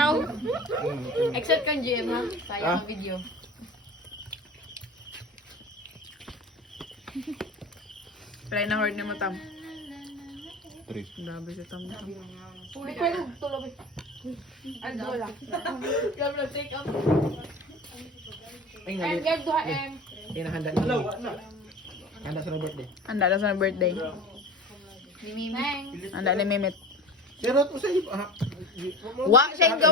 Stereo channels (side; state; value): both; normal; correlation 0.36